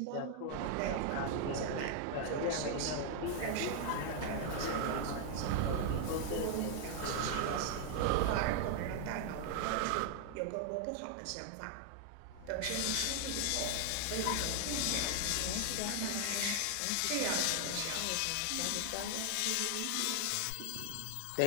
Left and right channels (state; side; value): different; both; correlation 0.00